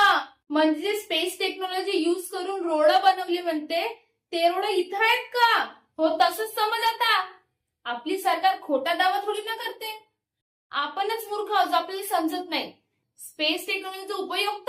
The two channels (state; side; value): identical; both; correlation 1.00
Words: म्हणजे स्पेस टेक्नॉलॉजी युज करून रोड बनवली म्हणते, ते रोड इथं आहेत का? हो, तसंच समज आता. आपली सरकार खोटा दावा थोडी ना करते. आपणच मूर्ख आहोत, आपल्याला समजत नाही. स्पेस टेक्नॉलॉजीचा उपयोग